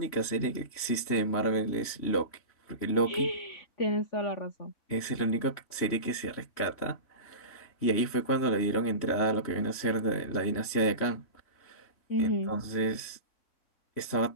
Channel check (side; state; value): right; late; 3.1 ms